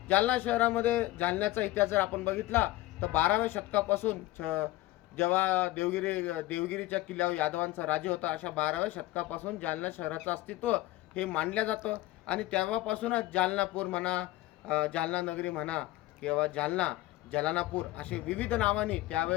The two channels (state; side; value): quieter; right; 17.1 dB